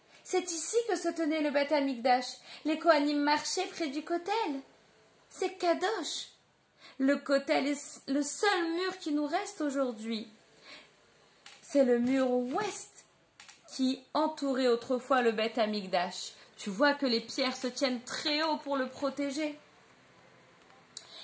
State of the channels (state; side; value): identical; both; correlation 1.00